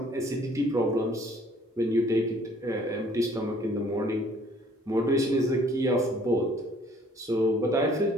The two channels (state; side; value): normal; both; correlation 0.58